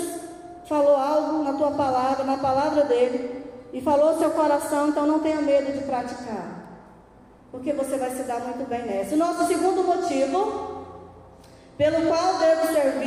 falou algo na tua palavra, na palavra dele, e falou ao seu coração, então não tenha medo de praticar, porque você vai se dar muito bem nessa. O nosso segundo motivo pelo qual devo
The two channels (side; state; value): both; identical; correlation 1.00